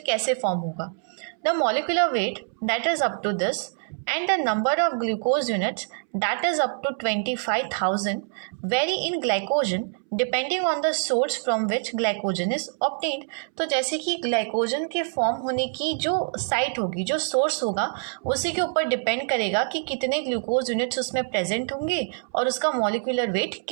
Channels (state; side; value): silent; left; 61 dB below the other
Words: कैसे फॉर्म होगा. The molecular weight that is up to this and the number of glucose units that is up to 25,000 vary in glycogen depending on the source from which glycogen is obtained. तो जैसे कि glycogen के form होने की जो site होगी, जो source होगा, उसी के ऊपर डिपेंड करेगा कि कितने ग्लूकोज यूनिट्स उसमें प्रेजेंट होंगे और उसका मॉलिक्यूलर वेट